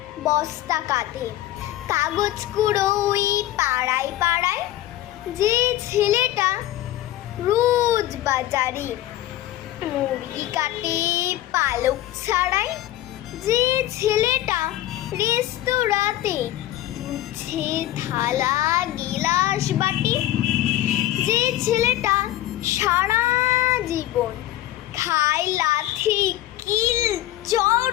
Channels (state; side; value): quieter; right; 14.4 dB